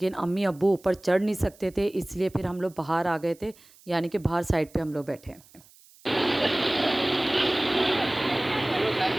अम्मी अब्बू ऊपर चढ़ नहीं सकते थे, इसलिए फिर हम लोग बाहर आ गए थे, यानी कि बाहर साइड पे हम लोग बैठे हैं।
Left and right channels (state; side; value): noise; right; hiss, 26 dB below the sound